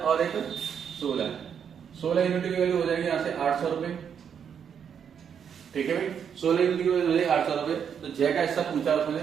और 1 16 यूनिट की वैल्यू हो जाएगी यहाँ से 800 रुपए। ठीक है भाई, 16 यूनिट की वैल्यू हो जाएगी 800 रुपए। तो जय का हिस्सा पूछा उसने,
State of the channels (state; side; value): quieter; left; 7.7 dB